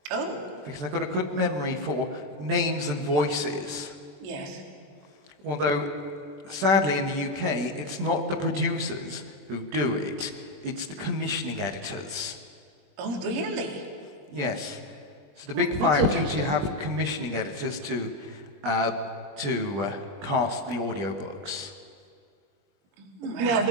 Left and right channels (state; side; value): late; left; 21 ms